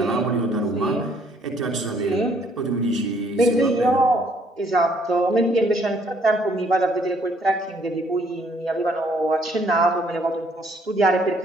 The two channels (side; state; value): both; normal; correlation 0.65